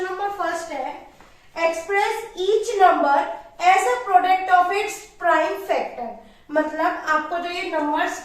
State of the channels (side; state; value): both; identical; correlation 1.00